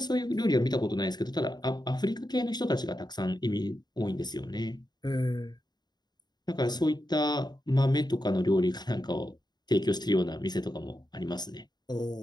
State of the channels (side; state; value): right; late; 0.20 ms